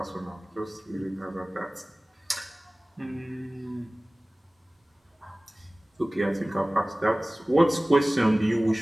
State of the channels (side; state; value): both; normal; correlation 0.98